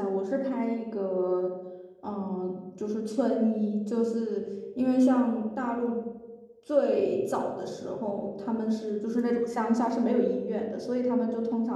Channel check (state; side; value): identical; both; correlation 1.00